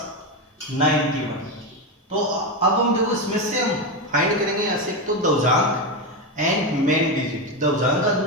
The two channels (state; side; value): normal; both; correlation 0.13